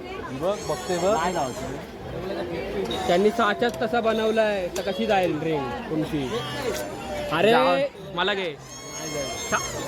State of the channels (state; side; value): identical; both; correlation 1.00